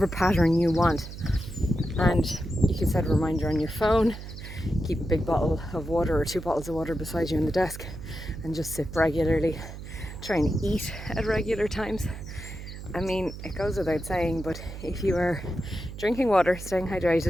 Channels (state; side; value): noise; right; hum, 11 dB below the sound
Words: pattern you want. And you can set a reminder on your phone, keep a big bottle of water or 2 bottles of water beside you on the desk, and just sip regularly. Try and eat at regular times. I mean, it goes without saying, but if you are drinking water, staying